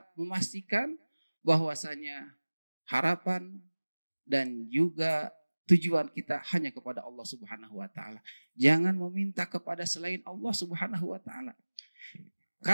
memastikan bahwasanya harapan dan juga tujuan kita hanya kepada Allah Subhanahu wa taala. Jangan meminta kepada selain Allah Subhanahu wa taala.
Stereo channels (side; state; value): both; inverted; correlation -1.00